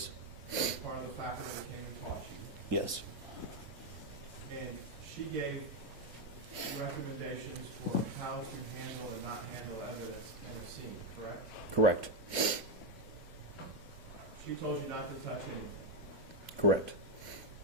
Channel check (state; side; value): normal; both; correlation 0.04